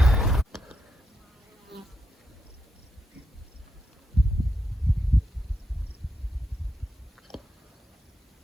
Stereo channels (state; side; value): normal; both; correlation 0.84